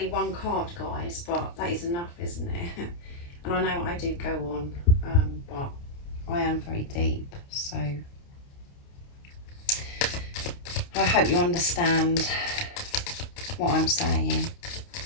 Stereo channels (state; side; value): late; right; 29 ms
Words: one card, guys, but that is enough, isn't it? And I know I do go on, but I am very deep, so I hope you understand what I'm saying.